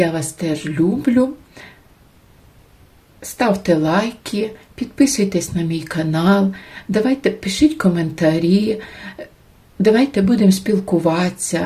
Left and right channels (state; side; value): identical; both; correlation 1.00